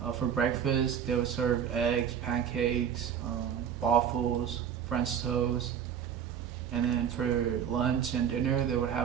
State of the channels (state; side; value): quieter; left; 8.4 dB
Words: For breakfast, they would serve eggs, pancakes, waffles, French toast. And then for lunch and dinner, they would